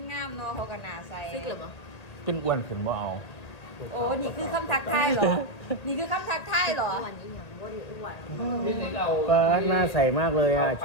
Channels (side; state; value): right; late; 1.8 ms